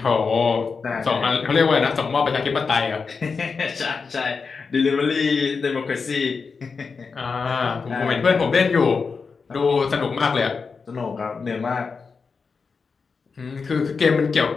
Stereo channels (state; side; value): quieter; right; 5.0 dB